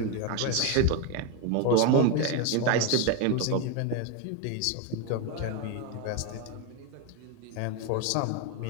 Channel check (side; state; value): both; different; correlation 0.02